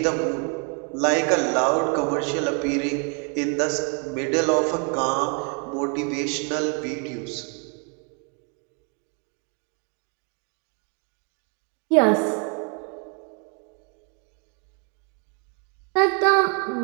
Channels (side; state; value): left; quieter; 38.4 dB